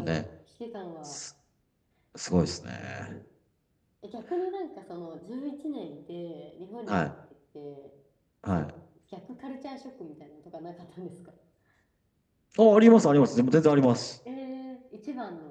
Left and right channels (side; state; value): both; identical; correlation 1.00